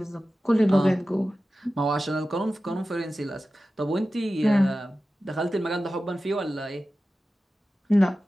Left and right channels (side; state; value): both; normal; correlation 0.94